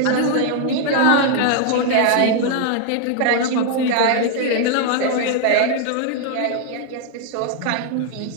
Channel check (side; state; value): both; different; correlation 0.00